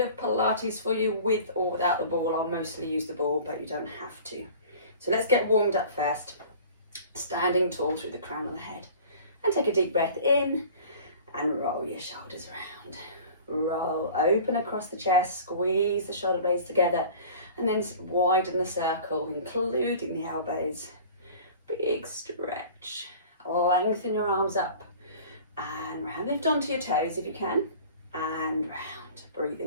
of Pilates for you with or without the ball. I'll mostly use the ball, but you don't have to. So let's get warmed up first. Standing tall through the crown of the head. And take a deep breath in and roll your shoulders around. Roll, open across the chest, squeeze the shoulder blades together, and then widen the circle, including the elbows. Big stretch. Lengthen your arms up and round. Lift onto your toes if you can, and round.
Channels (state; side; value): inverted; both; correlation -0.43